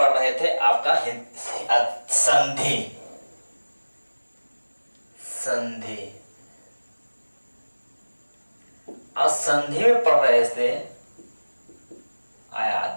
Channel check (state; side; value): inverted; both; correlation -1.00